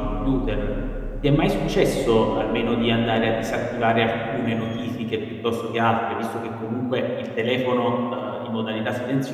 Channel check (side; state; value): both; identical; correlation 1.00